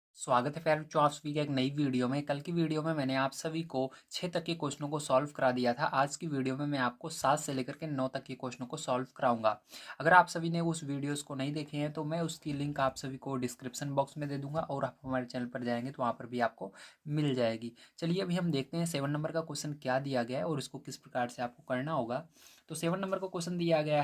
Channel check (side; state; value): both; identical; correlation 1.00